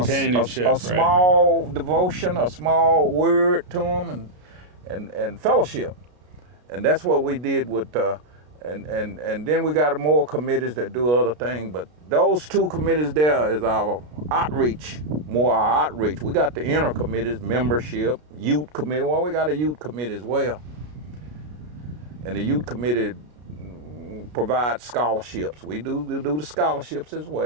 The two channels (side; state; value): left; late; 33 ms